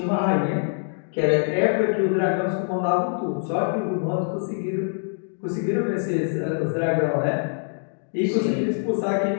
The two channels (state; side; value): silent; right; 62 dB below the other